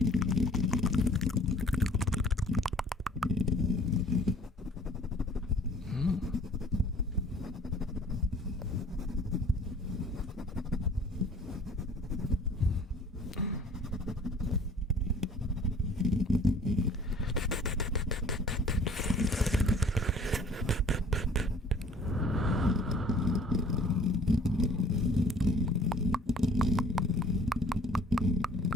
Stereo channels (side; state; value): both; normal; correlation 0.52